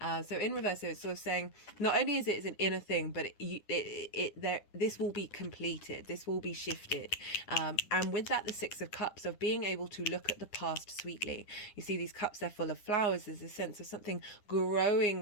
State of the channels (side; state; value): right; late; 9.9 ms